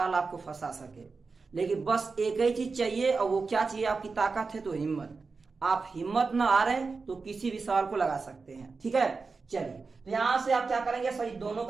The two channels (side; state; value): left; quieter; 4.4 dB